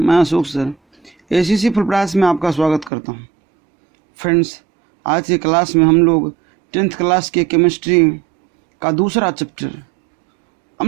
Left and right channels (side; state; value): left; drops out; at 2.9 s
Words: अशोक सर एसीसी फुल प्रयास में आपका स्वागत करता हूं। फ्रेंड्स, आज की क्लास में हम लोग 10th क्लास के केमिस्ट्री का दूसरा चैप्टर